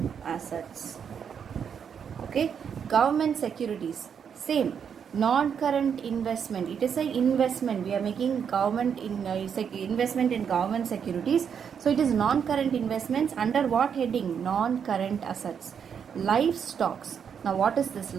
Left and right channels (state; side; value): quieter; left; 7.4 dB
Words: assets. Okay, government securities, same, non current investment. It is an investment. We are making government investment in government securities. So it is non current investments. Under what heading? Non current assets. Livestocks. Now what is this